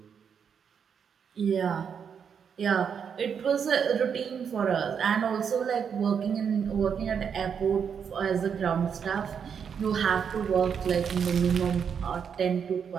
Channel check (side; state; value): left; quieter; 7.1 dB